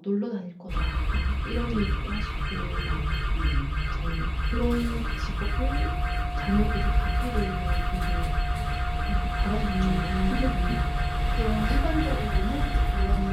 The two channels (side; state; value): both; identical; correlation 1.00